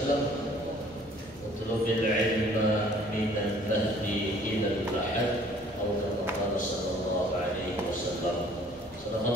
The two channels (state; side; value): normal; both; correlation 0.55